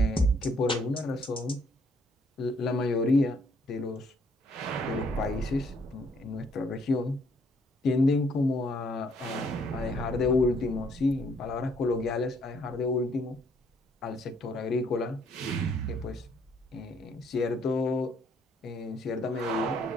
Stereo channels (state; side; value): normal; both; correlation 0.67